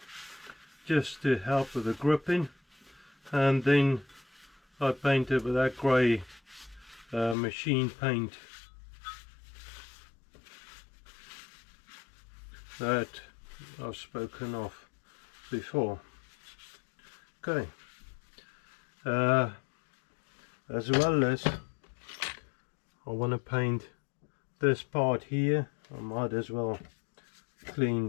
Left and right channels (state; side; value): drops out; right; at 7.4 s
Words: just to help with the gripping. And then I painted with that grey machine paint that I've spoken of before. Okay, as well as I want to paint this part here. I might as well